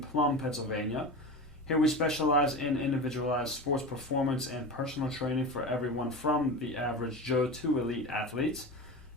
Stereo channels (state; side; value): normal; both; correlation 0.27